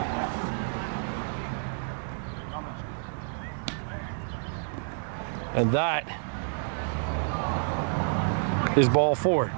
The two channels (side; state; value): left; silent; digital silence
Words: And that is ball 4,